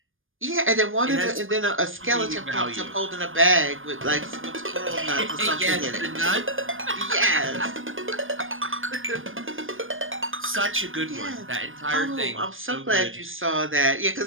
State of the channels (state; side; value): late; left; 0.59 ms